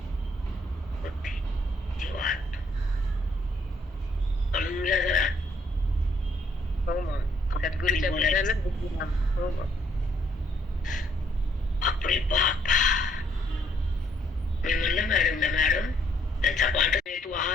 बुद्धी जीवात अळूला जरा हो मग सद्गुरूच्या बोलण्यालाच बुद्धिमान. हो मग बापरे बाप. मी म्हणलं मॅडम त्यांचा पाठ तू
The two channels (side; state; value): both; normal; correlation 0.68